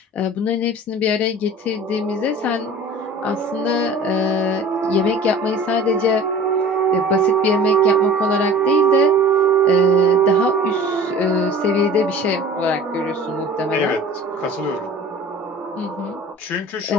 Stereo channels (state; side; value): normal; both; correlation 0.42